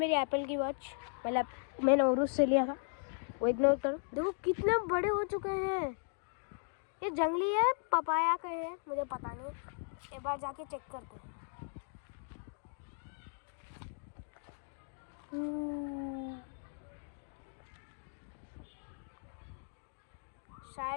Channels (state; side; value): silent; right; 53 dB below the other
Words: एप्पल की वॉच, मतलब मैंने उरुस से लिया था, वो इग्नोर करो। देखो कितने बड़े हो चुके हैं। ये जंगली है, पपाया का है, मुझे पता नहीं, एक बार जाके चेक करते हैं।